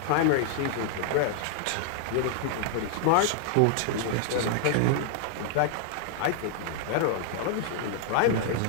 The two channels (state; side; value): different; both; correlation 0.00